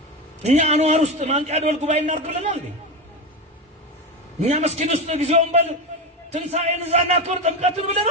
እኛ አንዋር ውስጥ ማንቂያ ደወል ጉባኤ እናድርግ ብለናል እንዴ? እኛ መስጊድ ውስጥ ጊዜውን በል ትንሣኤን እዛ እናክብር ጥምቀትን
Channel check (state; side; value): normal; both; correlation 0.18